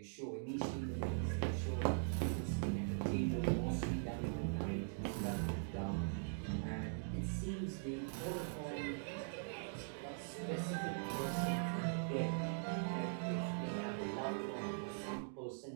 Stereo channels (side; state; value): left; silent; digital silence